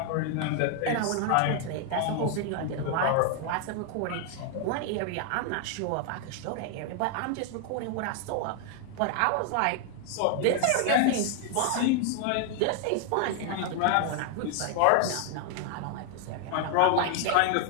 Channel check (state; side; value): different; both; correlation 0.00